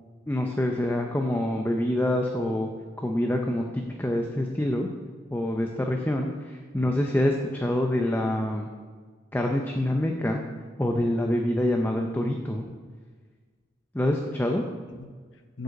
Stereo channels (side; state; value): both; normal; correlation 0.86